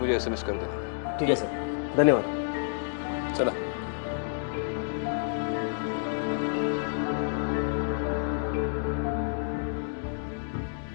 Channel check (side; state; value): right; silent; digital silence